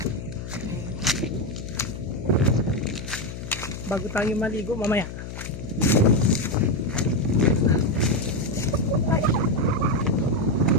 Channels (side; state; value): left; noise; hum, 9 dB below the sound